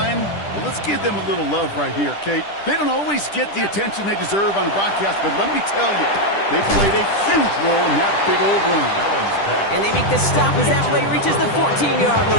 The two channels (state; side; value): late; right; 10 ms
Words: well, let's give them a little love right here, Kate. They don't always get the attention they deserve on the broadcast, but let me tell you, they played a huge role in that big old run. And they make the stop as that play reaches the 14-yard